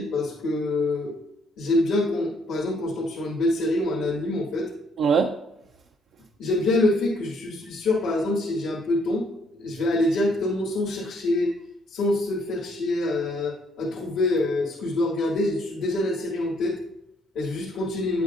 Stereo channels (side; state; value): both; normal; correlation 0.68